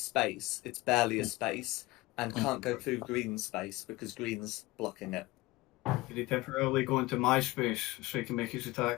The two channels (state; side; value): quieter; right; 20.3 dB